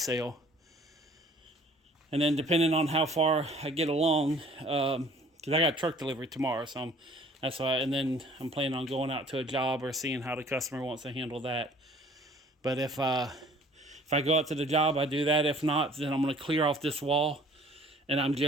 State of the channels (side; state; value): both; normal; correlation 0.53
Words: And then depending on how far I get along, because I got a truck delivery tomorrow, so that's why. And then I'm planning on going out to a job or seeing how the customer wants to handle that. But if I go out to the job, I do that. If not, then I'm going to clear off this wall, and I'm